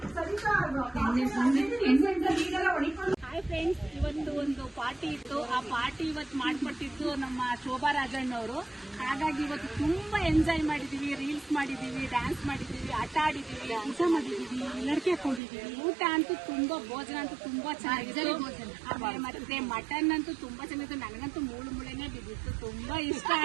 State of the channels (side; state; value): left; drops out; at 15.4 s